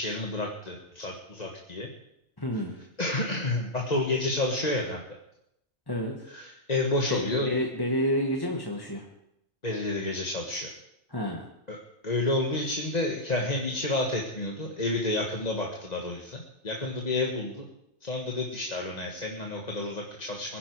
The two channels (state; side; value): normal; both; correlation -0.08